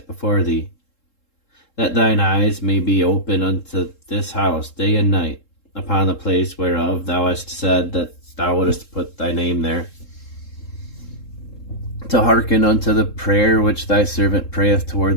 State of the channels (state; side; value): late; right; 3.7 ms